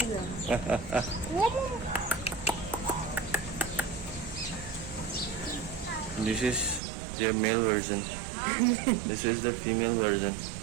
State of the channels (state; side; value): drops out; left; at 6.8 s